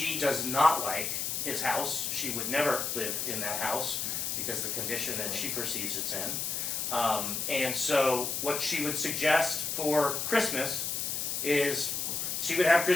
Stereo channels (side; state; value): left; noise; hiss, 1 dB below the sound